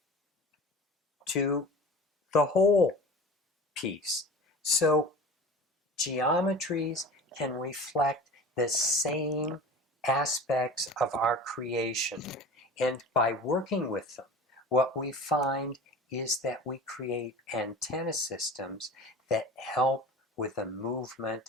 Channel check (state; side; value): normal; both; correlation 0.36